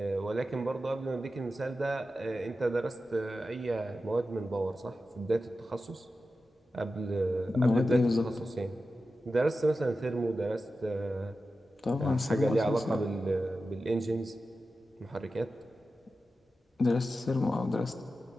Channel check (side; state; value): both; normal; correlation 0.92